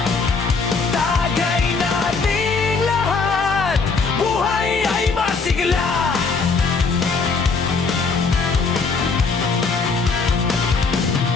Tagay nating lahat, buhay ay masigla.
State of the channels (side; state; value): right; quieter; 4.5 dB